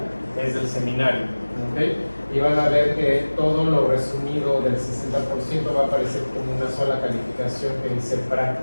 es del seminario, ¿okay? Y van a ver que todo lo resumido del 60% va a aparecer como una sola calificación que dice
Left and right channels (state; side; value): inverted; both; correlation -1.00